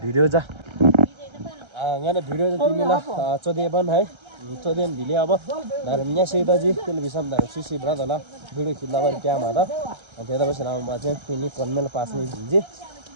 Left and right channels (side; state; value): left; late; 1.3 ms